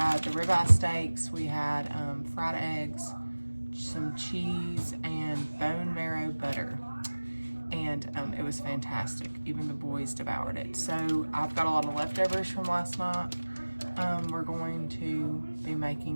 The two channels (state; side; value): inverted; both; correlation -1.00